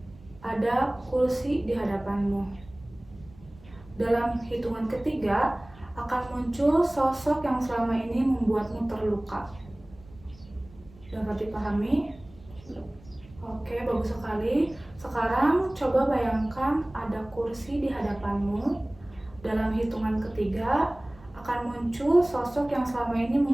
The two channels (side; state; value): right; noise; rumble, 22 dB below the sound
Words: ada kursi di hadapanmu. Dalam hitungan ketiga akan muncul sosok yang selama ini membuatmu terluka. Dapat dipahami? Oke, bagus sekali. Sekarang coba bayangkan ada kursi di hadapanmu. Dalam hitungan ketiga akan muncul sosok yang selama ini